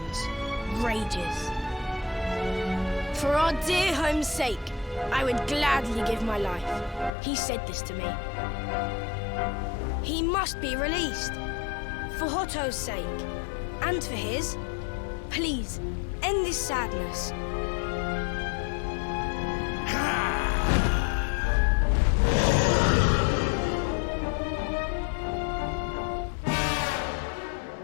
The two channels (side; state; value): right; drops out; at 7.1 s